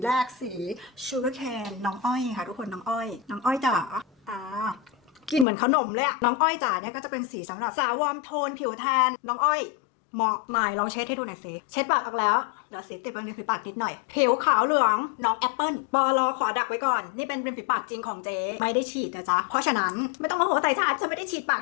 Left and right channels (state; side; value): drops out; right; at 5.5 s